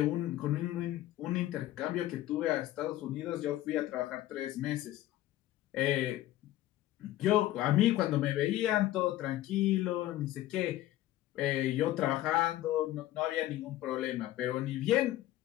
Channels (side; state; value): right; quieter; 14.6 dB